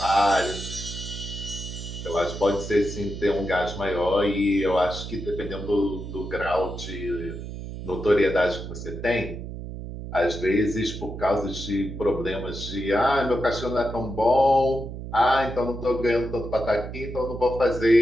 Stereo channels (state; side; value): noise; right; hum, 9 dB below the sound